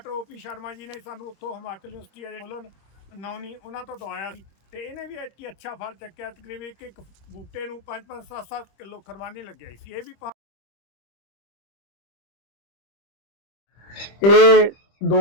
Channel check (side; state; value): right; late; 25 ms